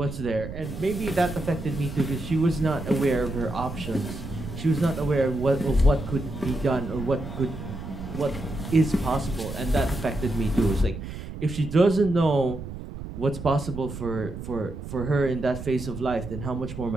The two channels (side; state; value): right; noise; rumble, 10 dB below the sound